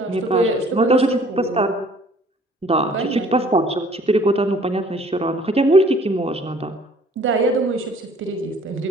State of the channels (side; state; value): both; normal; correlation 0.55